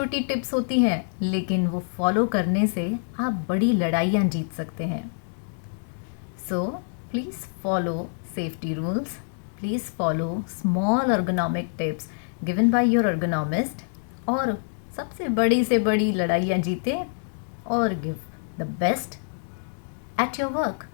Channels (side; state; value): right; silent; digital silence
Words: टिप्स होती हैं, लेकिन वो फॉलो करने से आप बड़ी लड़ाइयाँ जीत सकते हैं। So please follow safety rules, please follow small ergonomic tips given by your ergonomist, और सबसे बड़ी से बड़ी लड़ाइयाँ जीते और give the best at your work.